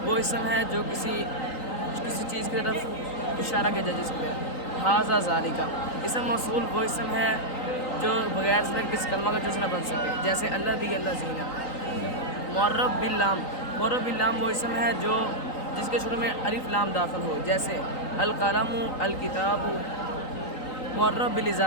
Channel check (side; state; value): right; late; 3.9 ms